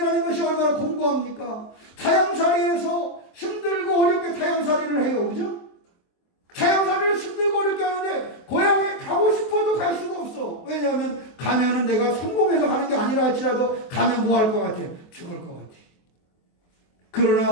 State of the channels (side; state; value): right; late; 23 ms